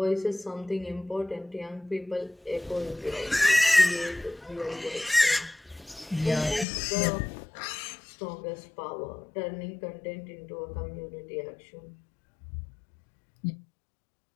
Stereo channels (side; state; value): right; drops out; at 6.7 s